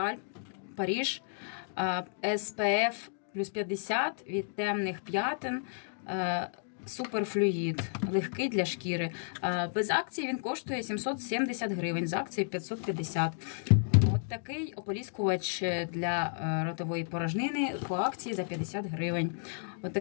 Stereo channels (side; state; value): right; silent; digital silence